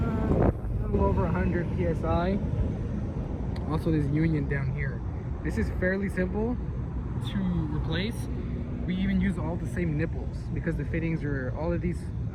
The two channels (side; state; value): both; identical; correlation 1.00